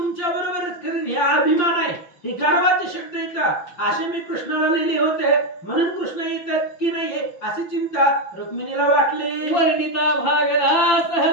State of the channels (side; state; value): right; late; 5.7 ms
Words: बरोबरच करेन. हे अभिमान आहे, हे गर्वाचे शब्द येतात असे मी कृष्णाला लिहिले होते. म्हणून कृष्ण येतात की नाही अशी चिंता रुक्मिणीला वाटली. वर्णिता भागला